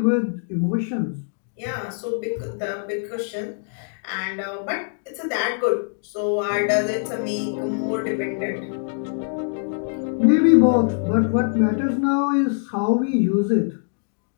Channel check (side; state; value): right; silent; digital silence